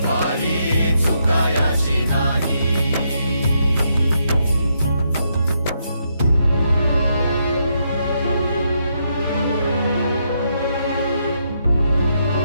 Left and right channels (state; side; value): inverted; both; correlation -0.78